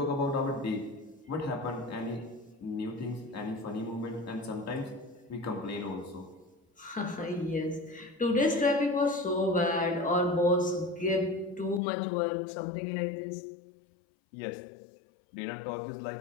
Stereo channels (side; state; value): right; drops out; at 11.8 s